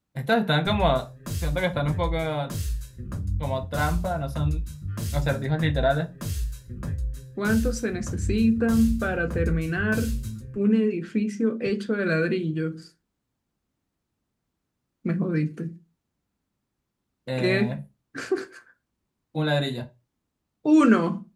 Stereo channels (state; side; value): identical; both; correlation 1.00